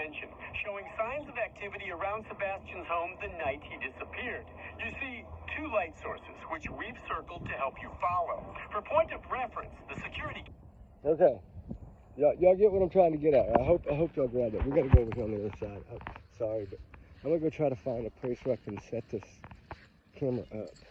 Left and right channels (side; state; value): both; identical; correlation 1.00